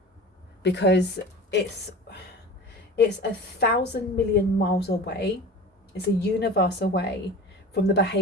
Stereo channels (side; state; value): both; normal; correlation 0.36